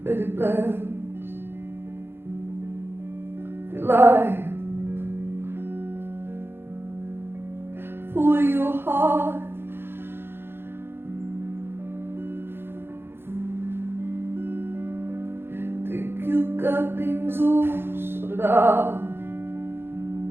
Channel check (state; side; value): late; left; 0.11 ms